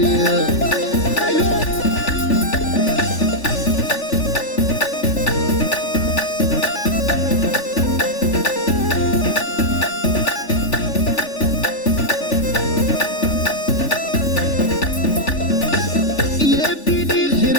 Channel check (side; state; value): right; late; 3.4 ms